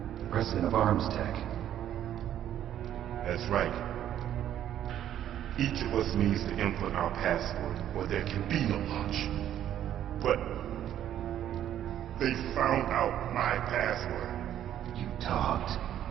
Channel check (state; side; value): quieter; left; 11.0 dB